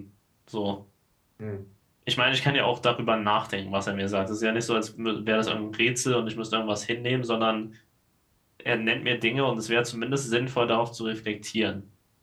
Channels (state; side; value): identical; both; correlation 1.00